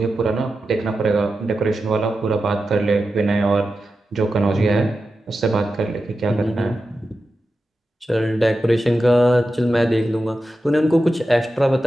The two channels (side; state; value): both; normal; correlation 0.91